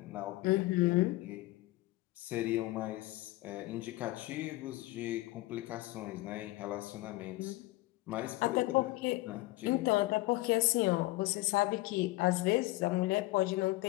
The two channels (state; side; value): quieter; right; 19.4 dB